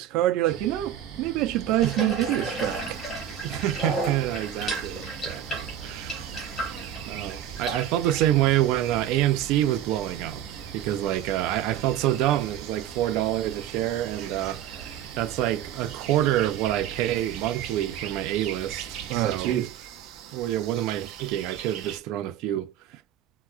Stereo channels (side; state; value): left; quieter; 11.1 dB